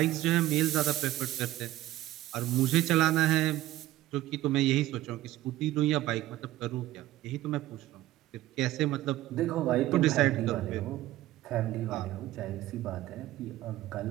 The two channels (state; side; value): quieter; left; 15.5 dB